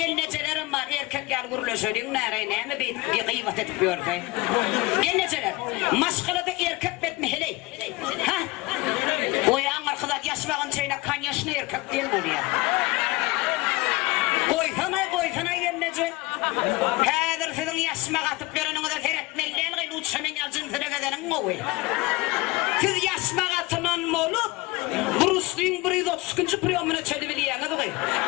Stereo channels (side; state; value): right; quieter; 22.2 dB